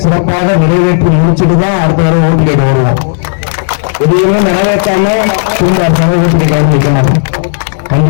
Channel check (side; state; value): right; silent; digital silence